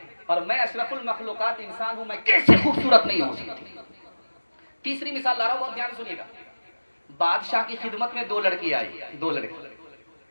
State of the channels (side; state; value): both; inverted; correlation -1.00